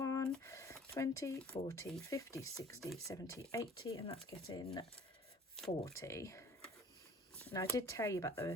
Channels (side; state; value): both; normal; correlation 0.50